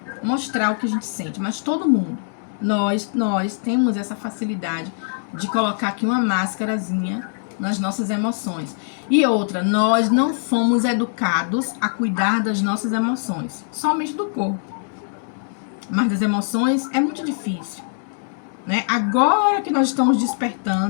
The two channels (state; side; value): silent; right; digital silence